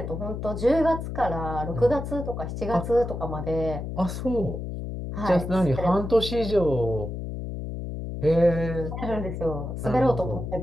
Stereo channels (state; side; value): noise; left; hum, 6 dB below the sound